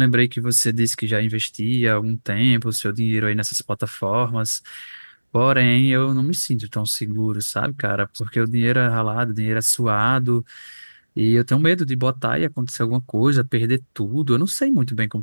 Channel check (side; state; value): both; inverted; correlation -1.00